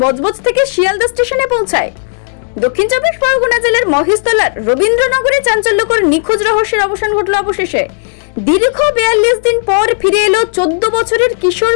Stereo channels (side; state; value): right; silent; digital silence